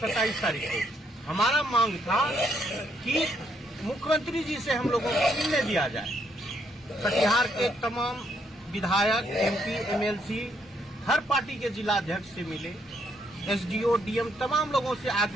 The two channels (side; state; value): both; normal; correlation 0.73